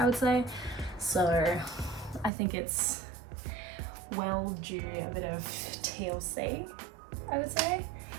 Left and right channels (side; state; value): left; drops out; at 2.3 s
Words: would say, so I think it's well due a bit of TLC, I would say.